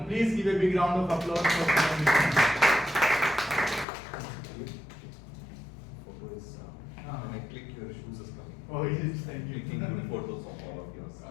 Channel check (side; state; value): right; drops out; at 3.9 s